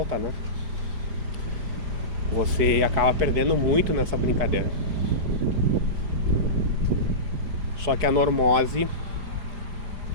né? Você acaba perdendo muito nessa brincadeira. Só que a normose,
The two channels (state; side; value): late; left; 4.9 ms